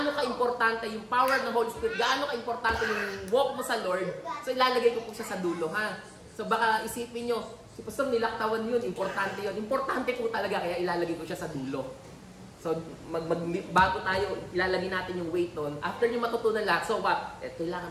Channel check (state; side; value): identical; both; correlation 1.00